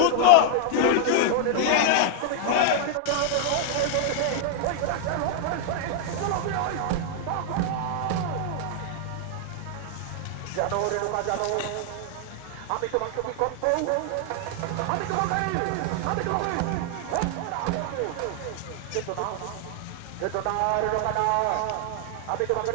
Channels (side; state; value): both; different; correlation 0.00